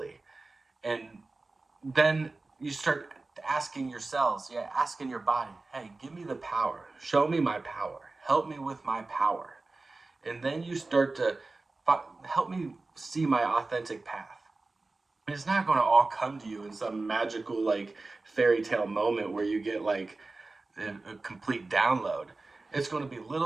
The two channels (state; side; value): quieter; left; 3.4 dB